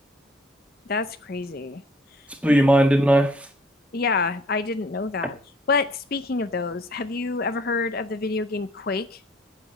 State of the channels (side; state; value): both; normal; correlation 0.59